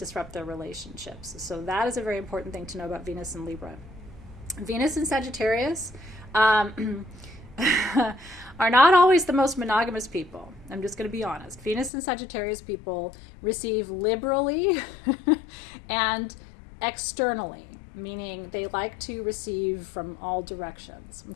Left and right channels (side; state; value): right; drops out; at 11.9 s